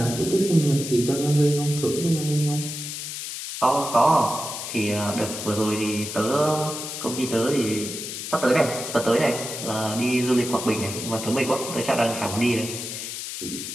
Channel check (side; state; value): left; noise; hiss, 7 dB below the sound